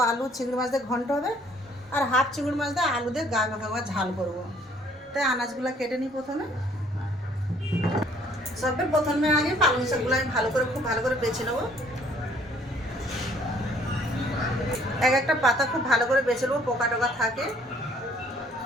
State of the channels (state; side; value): normal; both; correlation 0.60